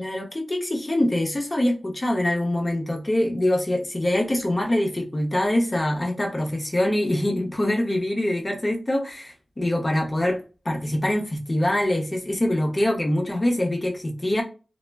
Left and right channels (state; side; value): normal; both; correlation 0.98